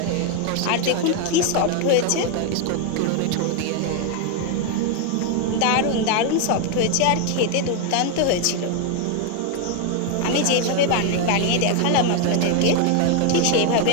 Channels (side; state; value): both; different; correlation 0.01